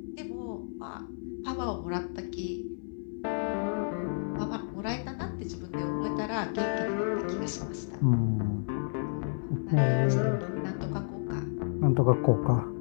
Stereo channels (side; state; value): right; silent; digital silence